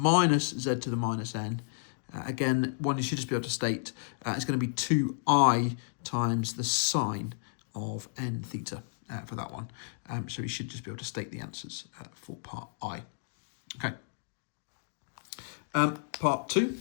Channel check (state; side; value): silent; right; digital silence